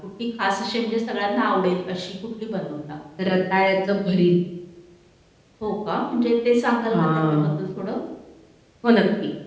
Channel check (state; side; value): identical; both; correlation 1.00